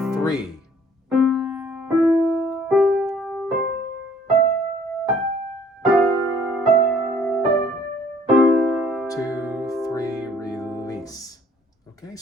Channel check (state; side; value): normal; both; correlation 0.58